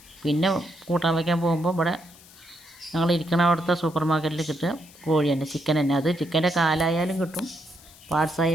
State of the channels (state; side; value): noise; left; hiss, 23 dB below the sound